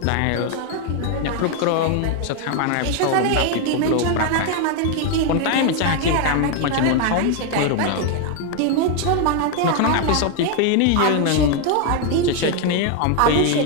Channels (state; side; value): different; both; correlation 0.01